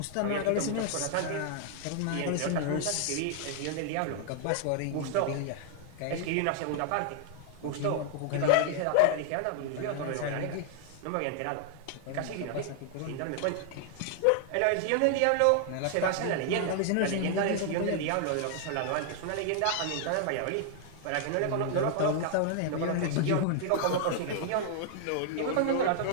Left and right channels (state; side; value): different; both; correlation 0.00